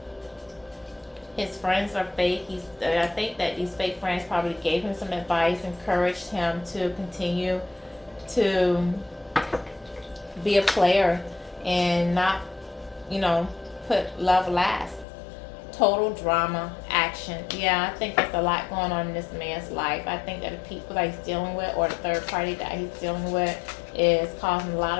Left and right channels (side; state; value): right; drops out; at 15.1 s